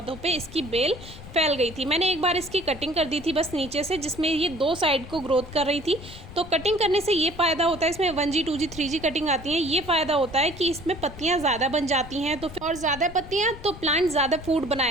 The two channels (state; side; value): noise; left; rumble, 15 dB below the sound